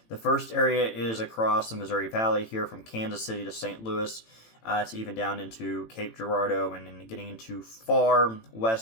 The first area is across the Missouri Valley here from Kansas City to St. Louis to even down into Cape Girardeau and then getting into far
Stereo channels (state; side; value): late; right; 18 ms